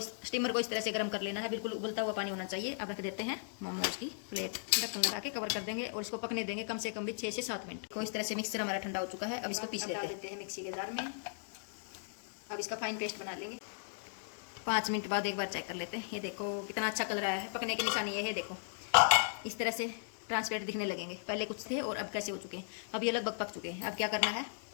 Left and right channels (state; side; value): silent; right; digital silence